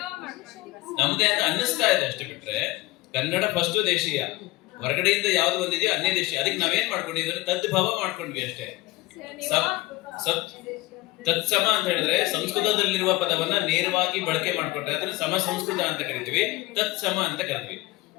ನಮ್ದೇ ಅಂತ ಅನ್ನಿಸ್ತಾ ಇದೆ ಅಷ್ಟೇ. ಬಿಟ್ರೆ ಕನ್ನಡ ಫಸ್ಟ್ ದೇಶೀಯ, ಹೊರಗಡೆಯಿಂದ ಯಾವ್ದು ಬಂದಿದೆಯೋ ಅನ್ಯ ದೇಶೀಯ. ಅದಕ್ಕೆ ನಾವೇನ್ ಮಾಡ್ಕೊಂಡಿದ್ವಿ, ತದ್ಭವ ಮಾಡ್ಕೊಂಡ್ವಿ ಅಷ್ಟೇ. ತತ್ಸಮ ಅಂತ ಹೇಳಿದ್ರೆ ಸಂಸ್ಕೃತದಲ್ಲಿರುವ ಪದವನ್ನ ನೇರವಾಗಿ ಬಳಕೆ ಮಾಡ್ಕೊಂಡ್ರೆ ಅದನ್ನ ಸಮ ಸಂಸ್ಕೃತ ಅಂತ ಕರಿತೀವಿ, ತತ್ಸಮ ಅಂತ ಕರಿತೀವಿ.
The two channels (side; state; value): right; quieter; 20.1 dB